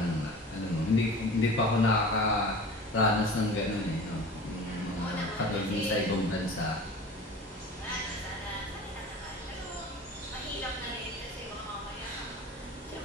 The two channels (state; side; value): normal; both; correlation 0.38